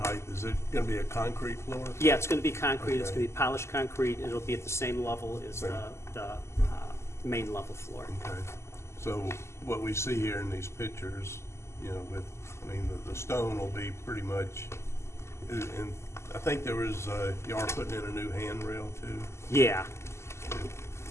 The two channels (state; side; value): late; right; 0.13 ms